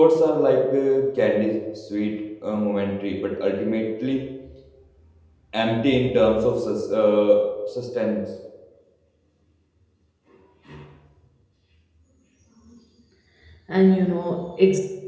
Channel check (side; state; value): both; identical; correlation 1.00